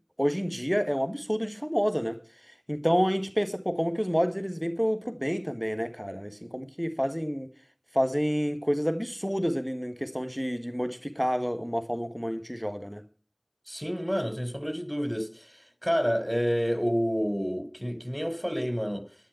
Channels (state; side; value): identical; both; correlation 1.00